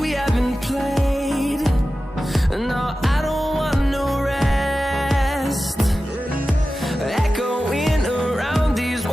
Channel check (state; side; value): normal; both; correlation 0.94